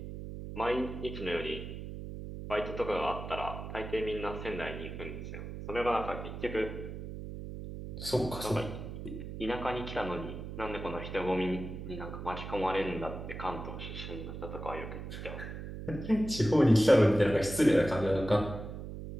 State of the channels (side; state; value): right; noise; hum, 8 dB below the sound